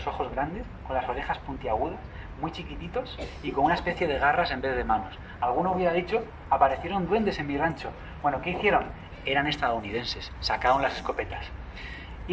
ojos grandes, con las orejas puntiagudas, muy chiquititos y con una especie de garras en vez de manos. Alguno hubiera dicho, aparecieron duendes en mi rancho. Bueno, ¿qué hicieron? Eran estadounidenses, sacaron las escopetas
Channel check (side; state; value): both; identical; correlation 1.00